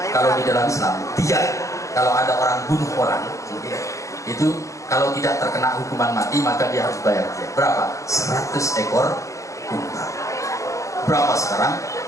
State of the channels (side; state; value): right; late; 0.15 ms